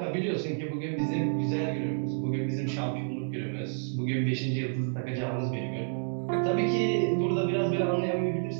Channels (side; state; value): left; silent; 58 dB below the other